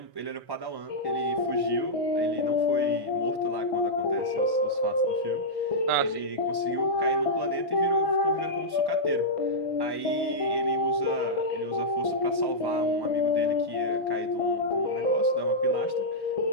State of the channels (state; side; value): late; left; 1.1 ms